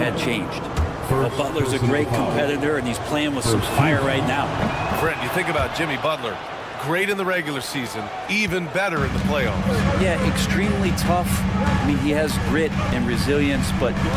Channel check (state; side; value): identical; both; correlation 1.00